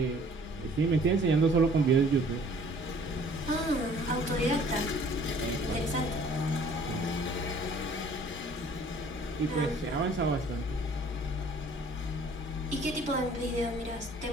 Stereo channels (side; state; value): both; normal; correlation 0.54